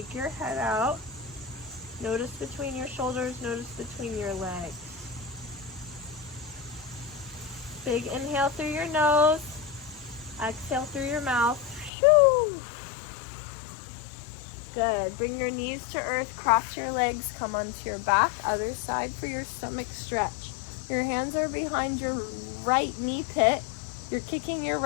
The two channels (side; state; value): right; drops out; at 11.9 s